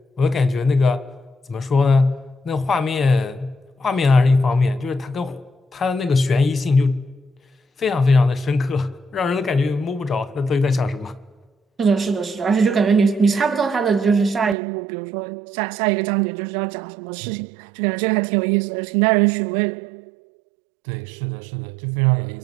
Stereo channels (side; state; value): left; drops out; at 14.6 s